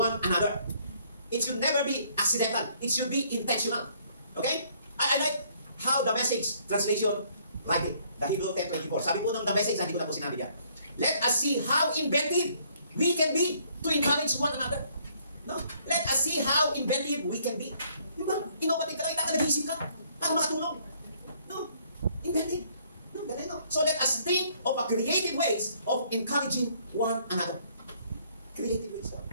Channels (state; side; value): inverted; both; correlation -0.64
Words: another. It should never be accidental. It should be intentional. Okay? I like how the Message translation write it. The Hebrew 10:24. Sabi po ng the Message, hindi ko na po sinabi yan. Let us see how inventive we can be to encourage one another. No? Let us see how inventive we can be. Diba? Innovative ka lang, nag-isip ka para makatulong. No? Inventive. No, no. So let us think of a creative ways of encouraging one another. Creative ways.